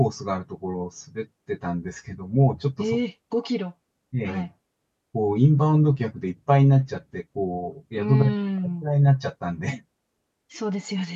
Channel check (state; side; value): identical; both; correlation 1.00